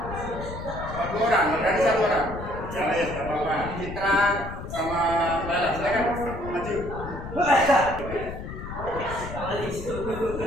orang, berarti 1 orang. Ya, ya, tidak apa-apa. Citra sama Lala, silakan maju.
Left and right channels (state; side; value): noise; left; rumble, 9 dB below the sound